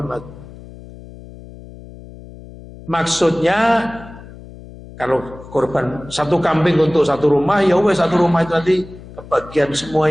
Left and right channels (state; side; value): noise; left; hum, 17 dB below the sound